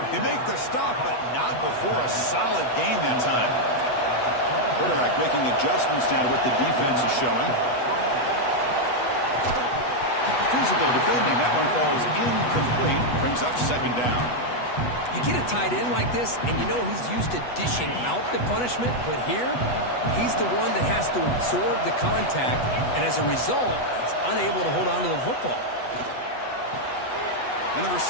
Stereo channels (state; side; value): late; right; 8.2 ms